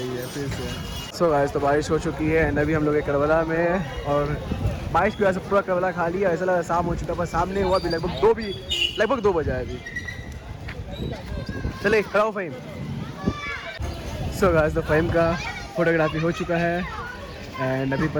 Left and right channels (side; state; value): both; identical; correlation 1.00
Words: है फिर से। सो गाइस, तो बारिश हो चुकी है एंड अभी हम लोग करबला में। और बारिश की वजह से पूरा करबला खा लिया, ऐसा लगा शाम हो चुका, पर शाम नहीं हुआ। अभी लगभग 2 बजा है अभी। चले खड़ा हो फ़हीम। सो गाइस, तो फ़हीम का फोटोग्राफी हो चुका है एंड अभी